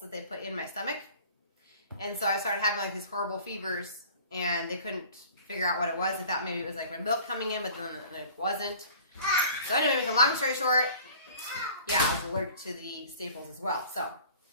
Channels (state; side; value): inverted; both; correlation -0.47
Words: that they put in my stomach. And so I started having like these horrible fevers, and they couldn't figure out what it was. They thought maybe it was like my milk coming in, but then it wasn't. So anyway, make a long story short, yeah, I was allergic to the staples as well. So